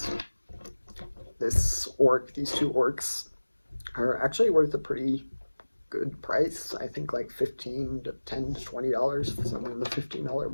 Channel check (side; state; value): both; inverted; correlation -1.00